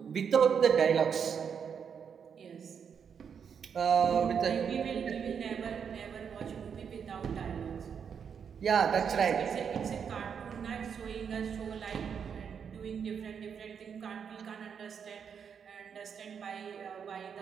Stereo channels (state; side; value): quieter; left; 7.1 dB